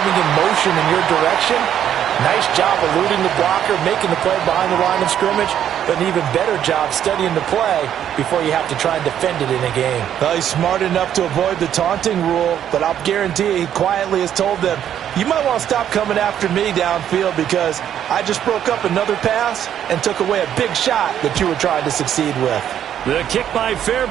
in motion in your direction. Nice job eluding the blocker, making the play behind the line of scrimmage, but an even better job studying the play before you have to try and defend it in a game. Well, he's smart enough to avoid the taunting rule, but I'll guarantee you he quietly has told them, you might want to stop coming after me downfield because I just broke up another pass and took away a big shot that you were trying to succeed with. The kick by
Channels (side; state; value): left; quieter; 10.0 dB